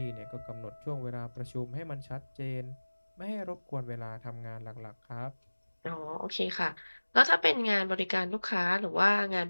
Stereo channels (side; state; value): both; inverted; correlation -1.00